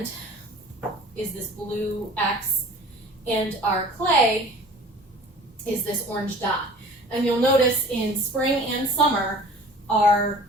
is this blue X, and our clay is this orange dot. And you'll notice in spring and summer, our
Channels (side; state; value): both; normal; correlation 0.46